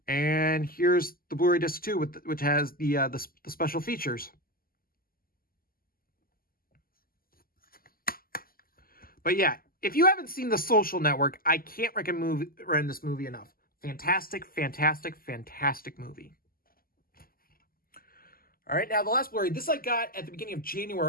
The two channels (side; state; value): right; late; 0.42 ms